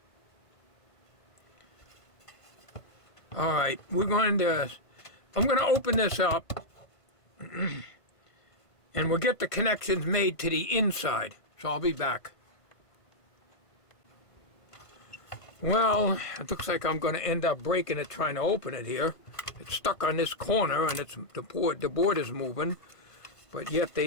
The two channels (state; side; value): late; right; 1.5 ms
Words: All right, I'm going to open this up and we'll get the connections made to the inside. So I'll be back. Well, it looks like I'm going to end up breaking it trying to open it here. It's stuck on this corner and it's the board is moving, but yet